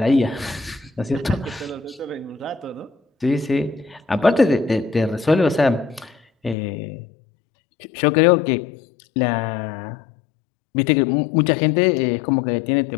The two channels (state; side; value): drops out; right; at 6.6 s